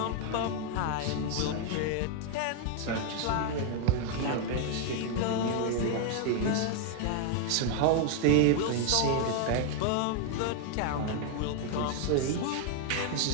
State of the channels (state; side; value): different; both; correlation 0.00